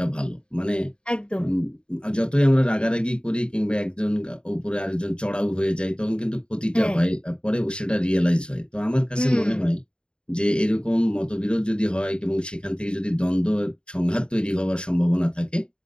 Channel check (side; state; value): right; late; 0.050 ms